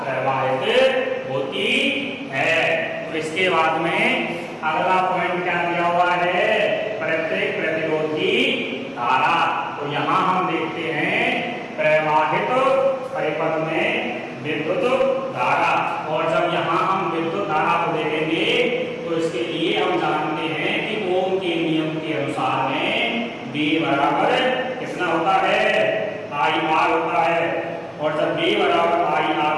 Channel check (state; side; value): identical; both; correlation 1.00